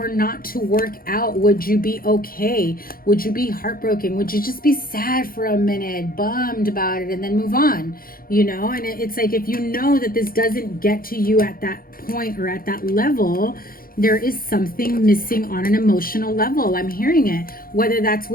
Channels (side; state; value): right; late; 0.42 ms